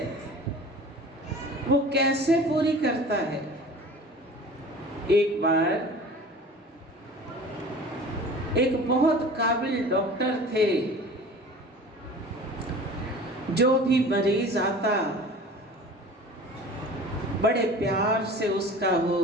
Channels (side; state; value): both; normal; correlation 0.41